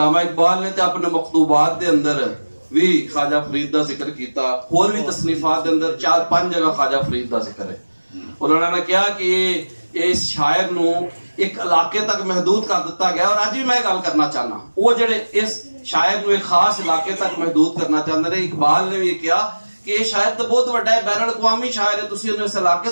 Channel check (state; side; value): inverted; both; correlation -1.00